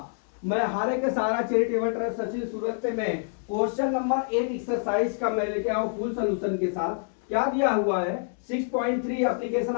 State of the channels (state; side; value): silent; right; digital silence